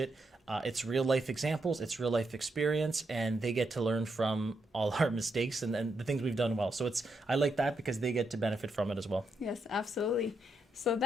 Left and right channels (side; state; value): both; normal; correlation 0.82